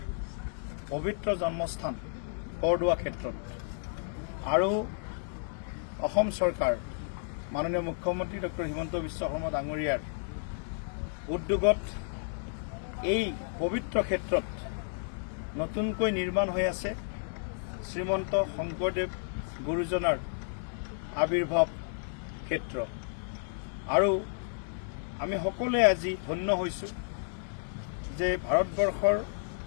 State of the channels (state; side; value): silent; right; 57 dB below the other